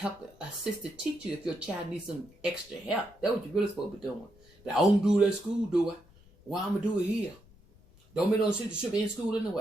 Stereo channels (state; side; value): noise; left; rumble, 27 dB below the sound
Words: assist the teacher if your child needs some extra help. That's what you're really supposed to be doing. But I don't do it at school, do I? Why I'm going to do it here? Don't make no sense. You should be in school